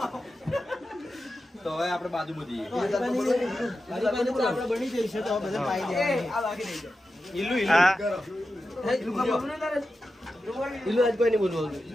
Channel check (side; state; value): both; normal; correlation 0.91